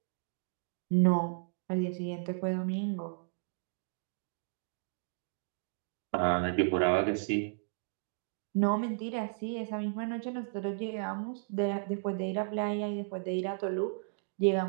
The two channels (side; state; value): left; silent; digital silence